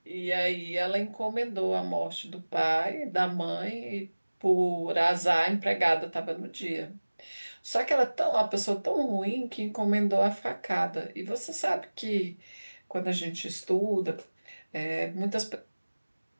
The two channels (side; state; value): both; inverted; correlation -1.00